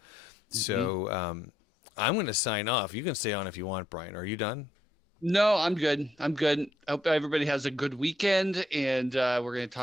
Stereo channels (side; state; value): both; normal; correlation 0.75